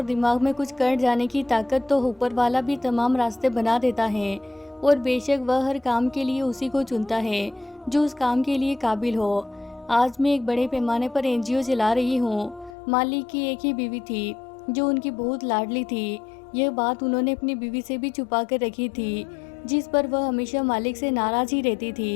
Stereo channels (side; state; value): right; drops out; at 12.7 s